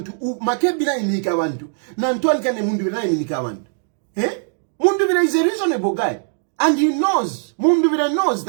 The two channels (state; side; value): silent; left; digital silence